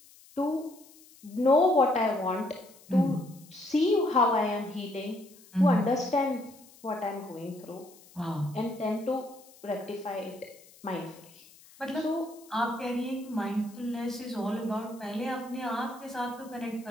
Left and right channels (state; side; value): noise; left; hiss, 24 dB below the sound